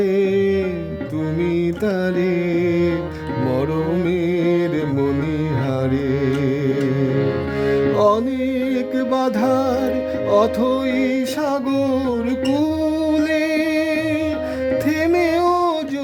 তুমি তারে মরমের মণিহারে। অনেক বাধার অথই সাগর কূলে, থেমেও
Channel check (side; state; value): both; identical; correlation 1.00